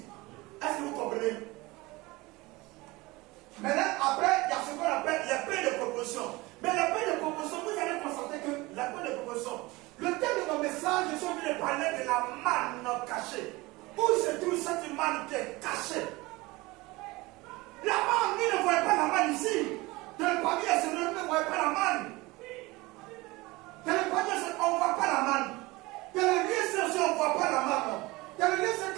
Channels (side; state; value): left; quieter; 21.9 dB